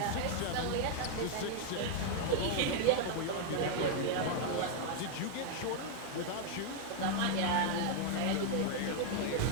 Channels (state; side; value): different; both; correlation 0.00